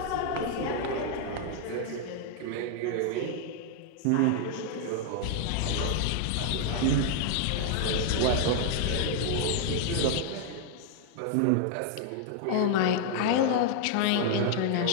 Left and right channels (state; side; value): different; both; correlation 0.00